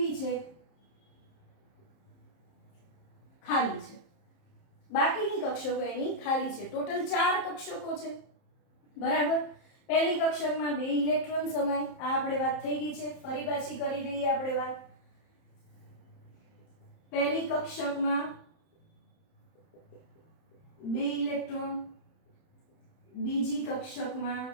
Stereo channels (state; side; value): late; right; 30 ms